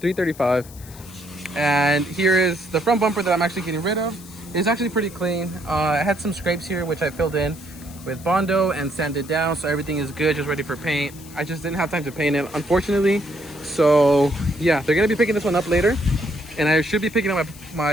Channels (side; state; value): left; noise; hiss, 20 dB below the sound